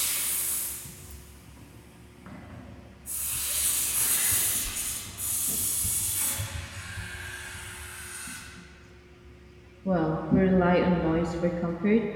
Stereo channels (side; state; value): both; identical; correlation 1.00